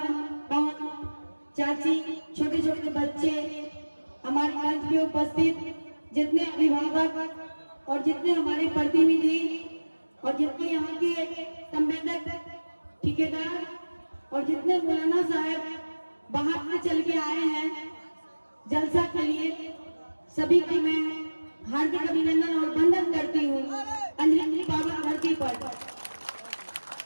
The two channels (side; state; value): both; inverted; correlation -1.00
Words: चाची, छोटे छोटे बच्चे, हमारे मंच में उपस्थित जितने अभिभावक और जितने हमारे प्रतिनिधि और जितने यहाँ के संवेदक, ठेकेदार और जितने मौलाना साहब बाहर से चल के आए हैं जलसा के लिए, सभी को मैं हार्दिक अभिनंदन और वंदन करती हूँ अंजलि बाबा धरती पर।